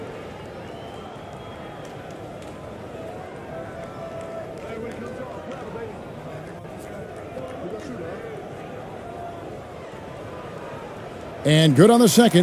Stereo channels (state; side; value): identical; both; correlation 1.00